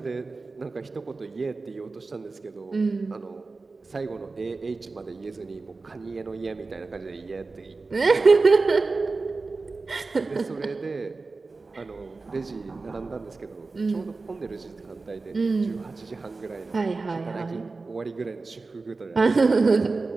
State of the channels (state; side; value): quieter; left; 3.8 dB